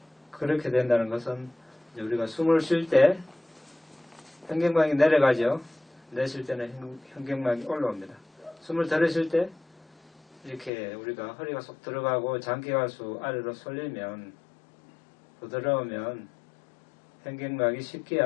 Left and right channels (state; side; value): drops out; right; at 10.7 s